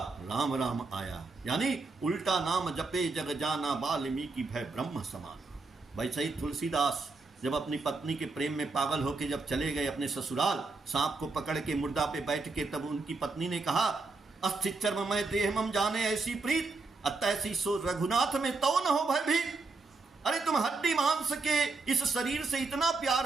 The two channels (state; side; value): quieter; left; 3.8 dB